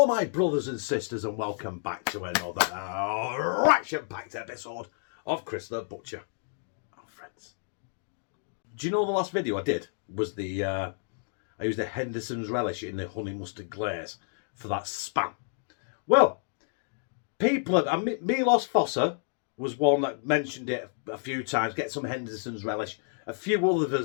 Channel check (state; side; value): silent; right; digital silence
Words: my brothers and sisters and welcome back to another action-packed episode of Chris the Butcher. Oh friends. Do you know the last video I did was I used the Henderson's Relish in the honey mustard glaze for that spam. Well, Milos Fossa was one that mentioned it a few times, get some Henderson's Relish. A few